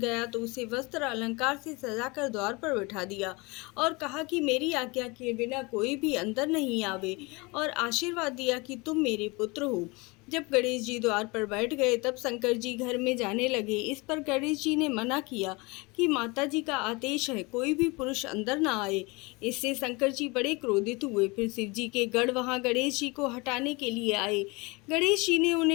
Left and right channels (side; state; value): right; quieter; 26.2 dB